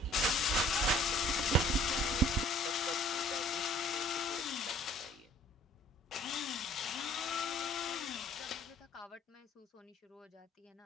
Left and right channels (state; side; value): normal; both; correlation 0.54